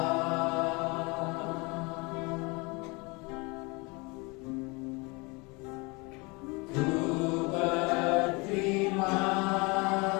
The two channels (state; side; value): quieter; right; 27.5 dB